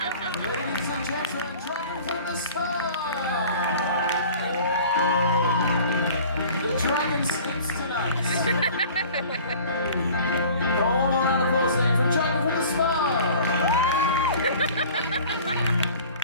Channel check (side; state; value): both; inverted; correlation -0.46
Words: Ladies and gentlemen, Dragon from the Star! The dragon sleeps tonight. One more round of applause there from Dragon from the Spa!